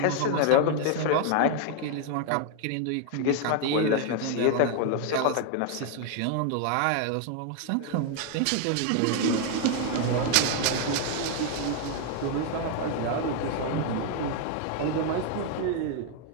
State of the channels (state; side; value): different; both; correlation 0.00